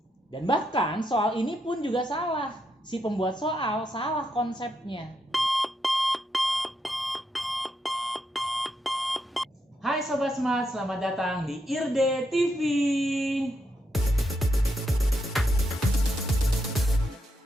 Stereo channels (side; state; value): both; normal; correlation 0.81